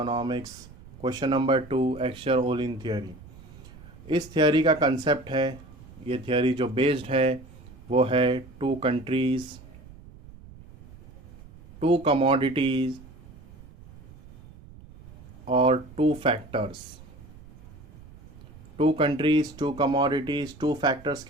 question number 2 Heckscher Ohlin theory. इस थियोरी का कंसेप्ट है, ये थियोरी जो बेस्ड है वो है टू कंट्रीज़, टू कमोडिटीज़ और two factors. Two countries, two commodities, two factors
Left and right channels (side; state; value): right; noise; rumble, 20 dB below the sound